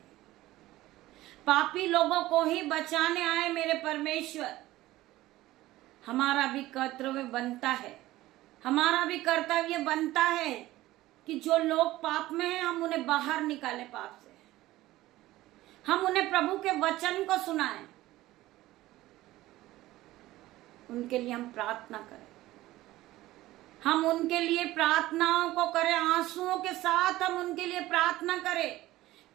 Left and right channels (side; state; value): left; quieter; 16.6 dB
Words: पापी लोगों को ही बचाने आए मेरे परमेश्वर। हमारा भी कर्तव्य बनता है, हमारा भी कर्तव्य बनता है कि जो लोग पाप में हैं, हम उन्हें बाहर निकालें पाप से। हम उन्हें प्रभु के वचन को सुनाएं, उनके लिए हम प्रार्थना करें, हम उनके लिए प्रार्थनाओं को करें, आंसुओं के साथ हम उनके लिए प्रार्थना करें